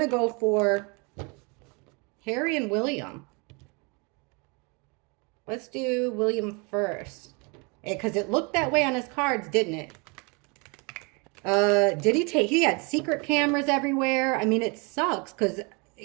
go for Harry and William. Let's do William first. Because it looked that way on his cards, didn't it? He had secret cameras everywhere. I mean, it sucks because,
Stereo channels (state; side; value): quieter; left; 31.1 dB